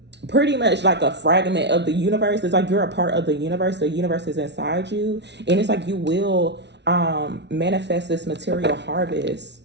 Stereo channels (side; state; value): left; late; 0.50 ms